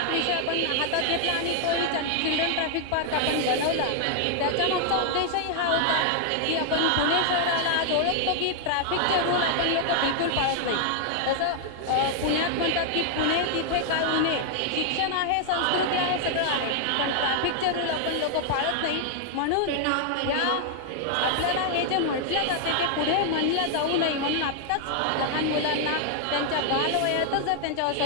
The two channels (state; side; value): different; both; correlation 0.00